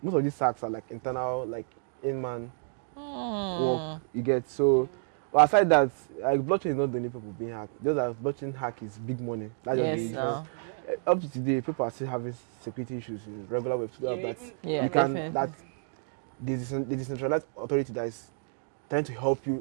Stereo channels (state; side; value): silent; left; digital silence